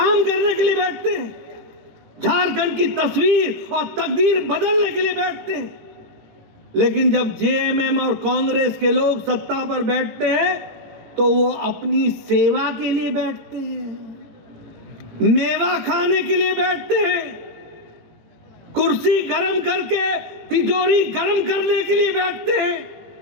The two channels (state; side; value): late; left; 18 ms